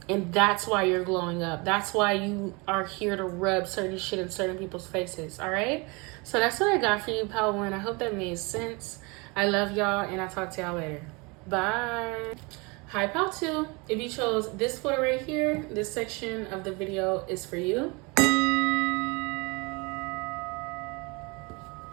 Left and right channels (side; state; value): left; quieter; 28.1 dB